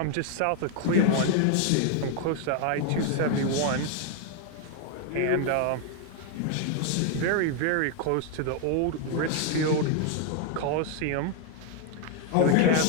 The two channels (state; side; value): different; both; correlation 0.00